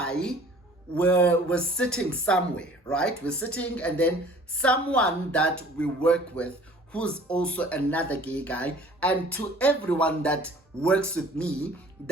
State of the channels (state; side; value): normal; both; correlation 0.50